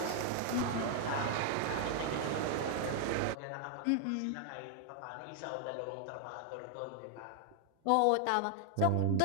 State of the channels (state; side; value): different; both; correlation 0.00